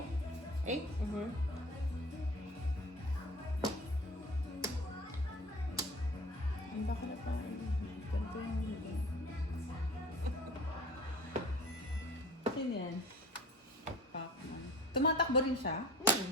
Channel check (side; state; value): both; normal; correlation 0.41